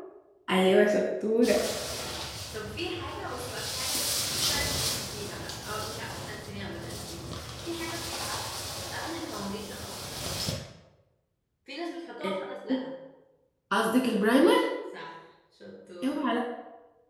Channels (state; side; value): identical; both; correlation 1.00